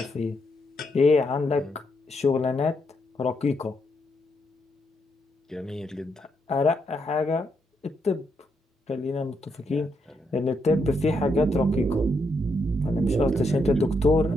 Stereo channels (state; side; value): normal; both; correlation 0.79